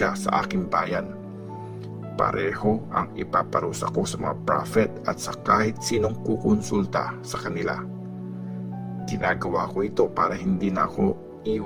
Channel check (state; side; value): identical; both; correlation 1.00